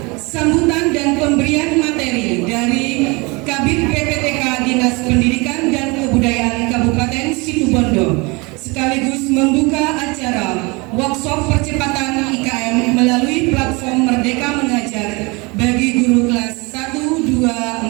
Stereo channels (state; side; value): quieter; left; 26.8 dB